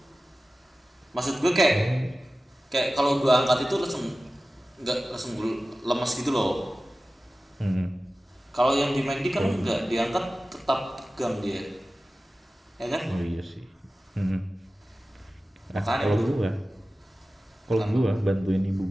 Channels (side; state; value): both; normal; correlation 0.96